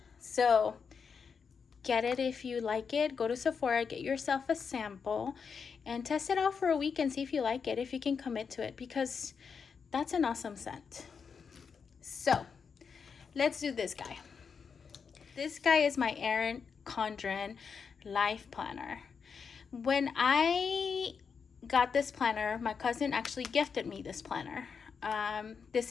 So get it if you like it. Go to Sephora, get yourself a sample, and test it out for a week and see if you like it, if you can commit to it, because that's an awesome scent. So let's do this guy. This guy is my Erin Condren Life Planner. When I got this planner, my cousin actually gifted me this planner. This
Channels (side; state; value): right; quieter; 6.0 dB